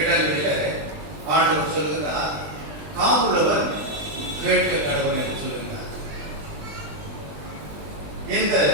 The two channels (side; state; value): left; late; 20 ms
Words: ஆண்டவர் சொல்லுகிறார், காதுள்ளவன் கேட்க கடவுள் என்று சொல்லுகிறார். இந்த